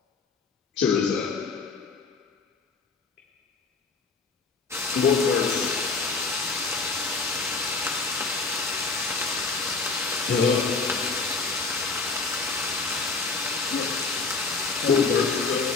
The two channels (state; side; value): quieter; right; 4.3 dB